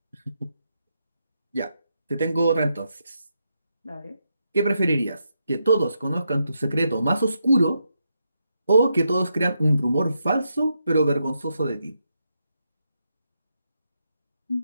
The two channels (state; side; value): inverted; both; correlation -0.82